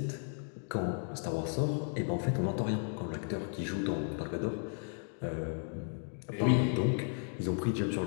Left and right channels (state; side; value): silent; right; 55 dB below the other